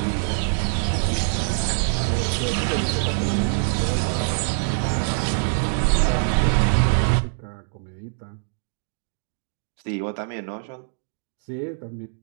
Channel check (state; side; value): silent; left; digital silence